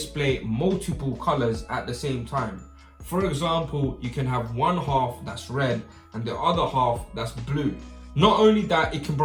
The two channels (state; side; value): identical; both; correlation 1.00